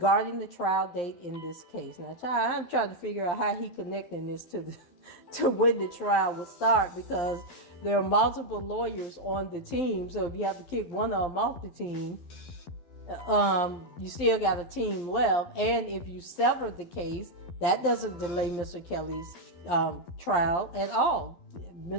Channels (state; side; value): late; right; 12 ms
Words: the trial date in this case. Now, I'm trying to figure out how he connecting this to when the trial would start, because there are multiple lawyers on the team. So if you have to kick one of them off the team, you still got a team left. And if you sever the case, that doesn't delay Mr. Kelly's trial at all.